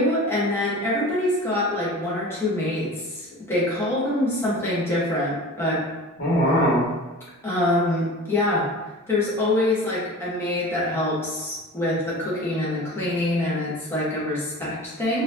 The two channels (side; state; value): both; normal; correlation 0.37